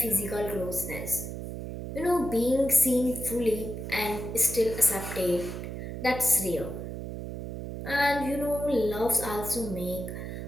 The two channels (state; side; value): noise; right; hum, 7 dB below the sound